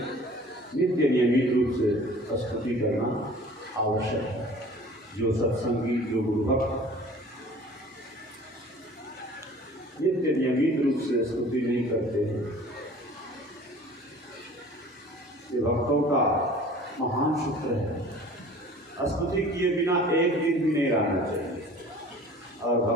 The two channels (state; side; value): normal; both; correlation 0.46